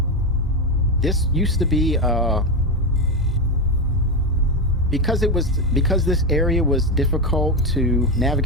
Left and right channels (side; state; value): both; normal; correlation 0.11